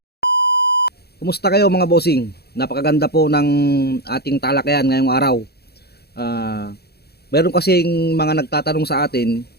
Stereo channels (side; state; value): right; late; 0.47 ms